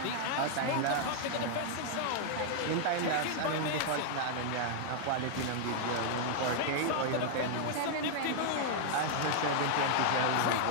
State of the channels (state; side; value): different; both; correlation -0.01